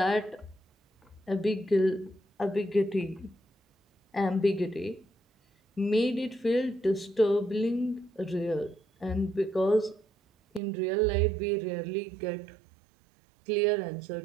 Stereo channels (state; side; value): drops out; left; at 10.6 s